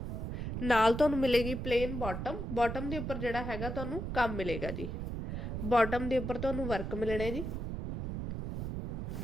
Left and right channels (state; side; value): noise; right; rumble, 4 dB below the sound